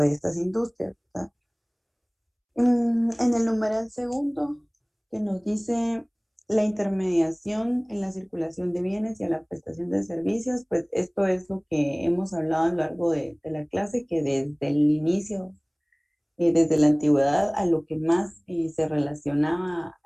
estas industrias, ¿verdad? En el numeral segundo, que nos dice la intermediación en la circulación de bienes y a la prestación de servicios, pues esto es lo que hemos hablado a lo largo de la clase, que desde el inicio, desde la antigüedad, a lo que más se relacionaba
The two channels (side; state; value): both; identical; correlation 1.00